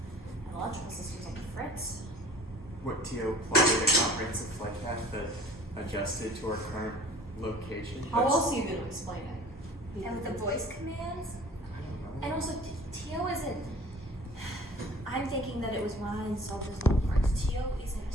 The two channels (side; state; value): both; normal; correlation 0.48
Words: and electrical systems on the fritz. What TO plotted a comprehensive flight path that adjusted to our current location? How else are you going to explain it? And with the voice commands, I don't know. and also TO isn't. I'm thinking that it was when I installed those little parts. TO isn't a